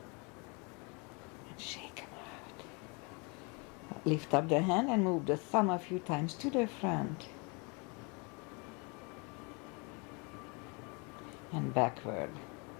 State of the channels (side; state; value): right; quieter; 31.4 dB